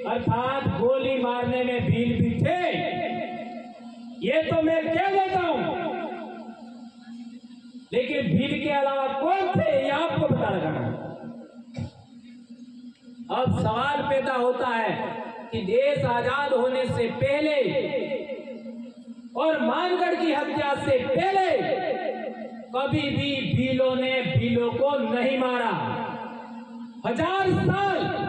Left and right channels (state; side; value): identical; both; correlation 1.00